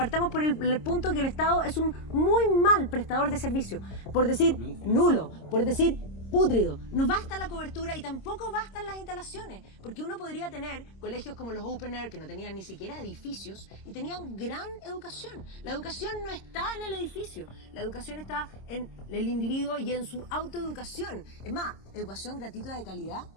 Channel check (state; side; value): late; right; 26 ms